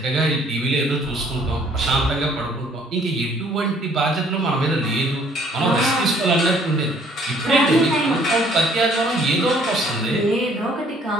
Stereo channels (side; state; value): both; normal; correlation 0.60